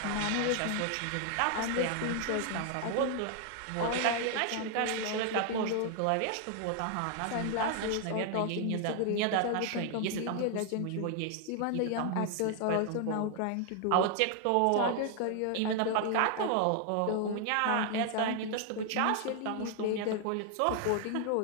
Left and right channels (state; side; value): different; both; correlation 0.00